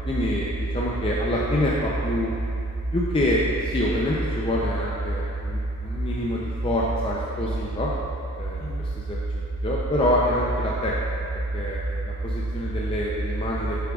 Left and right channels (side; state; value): both; normal; correlation 0.54